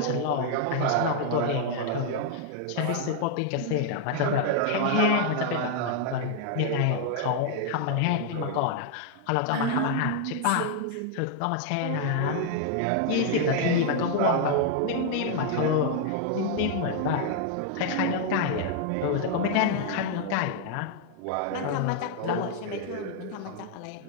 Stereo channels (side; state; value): both; different; correlation 0.00